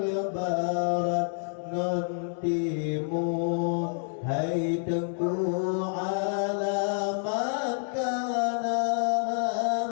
barat ngon timur hai tengku alamat kana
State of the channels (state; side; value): silent; right; 59 dB below the other